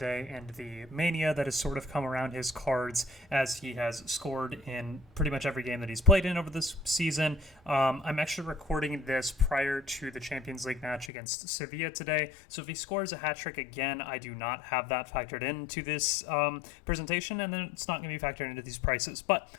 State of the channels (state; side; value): drops out; right; at 11.1 s